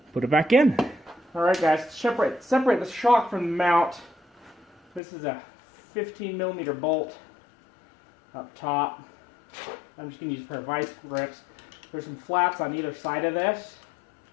put it back in. Alright guys, separate the shock from the mount. This is a 15mm bolt up top. I'm just going to use a pair of vice grips. There's some flaps on either side of this,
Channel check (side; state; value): right; drops out; at 5.0 s